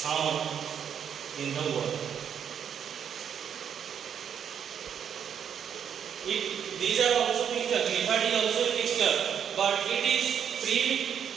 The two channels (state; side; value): quieter; left; 8.3 dB